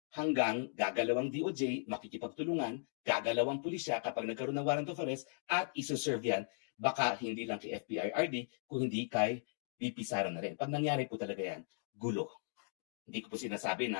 hanggang gagalawang DOJ, makikipagtulungan, gagalawang pulisya kapag nagkaroon ng warrant of arrest at isoserve yan, baka hindi lang kay FPRRD, kung hindi kay VP Sara na rin. Pag nangyari po talaga yan, gulo. Hindi ko po sinasabi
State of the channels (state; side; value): silent; right; digital silence